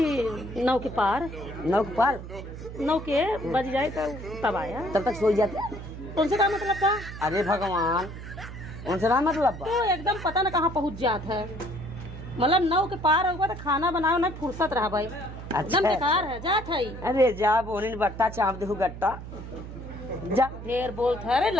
9 के पार 9 के पार 9 के बज जाए तो तब आया। तब तक सो जाते। उनसे क्या मतलब था? अरे भगवान उनसे ना मतलब तो एकदम पता न कहाँ पहुँच जाता है मतलब 9 के पार होगा तो खाना बनाओ ना फुर्सत रहा भाई एकदम बेकार है जात है। अरे जा बोनी बट्टा चाप दे गट्टा जा ढेर बोलते है। अरे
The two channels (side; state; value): right; noise; hum, 11 dB below the sound